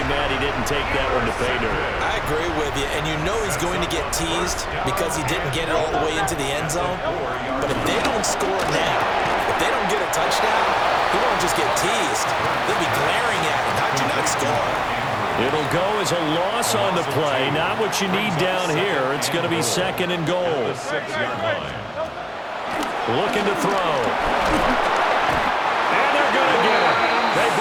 mad he didn't take that one to pay dirt. I agree with you, and you know he's going to get teased because he didn't get it all the way into the end zone. But if they don't score now, if they don't get a touchdown, he won't just get teased. They'll be glaring at him. How'd you not score? It'll go as a loss on the play. Not what you need down here. It's going to be 2nd and goal. Looking to throw. And they're going to get him. They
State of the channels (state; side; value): identical; both; correlation 1.00